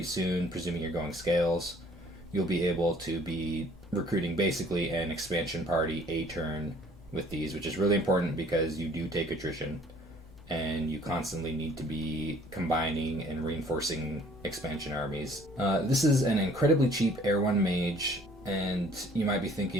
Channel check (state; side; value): normal; both; correlation 0.56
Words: soon, presuming you're going scales. You'll be able to be recruiting basically an expansion party a turn with these, which is really important because you do take attrition and you constantly need to be combining and reinforcing expansion armies. This is an incredibly cheap Air 1 mage, and you might be